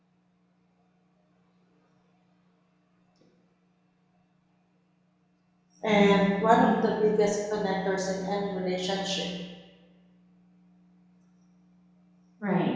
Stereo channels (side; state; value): both; identical; correlation 1.00